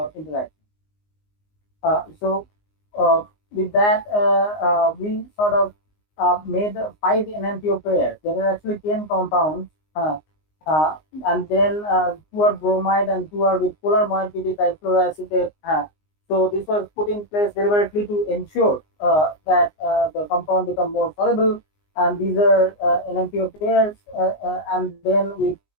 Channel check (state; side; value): late; right; 19 ms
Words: interaction. So with that, we sort of made 5 NMPO pairs. There are actually 10 compounds, uh, and then 2 are bromide and 2 are with polar moiety difluoroacetate. So this was put in place deliberately to ensure that the compound become more soluble. And these are NMPO pairs, and then we